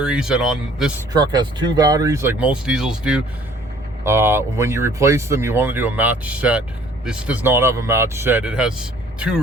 and on this truck has 2 batteries like most diesels do. When you replace them, you want to do a match set. This does not have a match set. It has 2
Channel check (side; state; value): both; normal; correlation 0.56